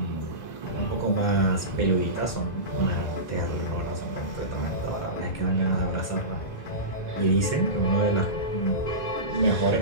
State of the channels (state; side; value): late; right; 2.0 ms